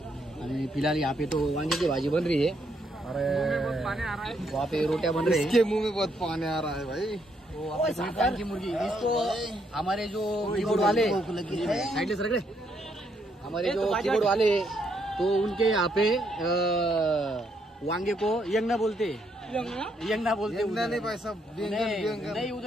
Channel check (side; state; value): both; normal; correlation 0.74